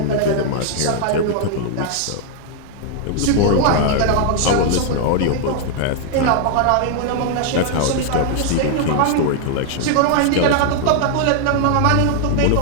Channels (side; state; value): both; different; correlation 0.00